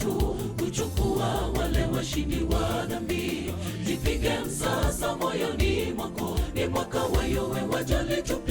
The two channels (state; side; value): identical; both; correlation 1.00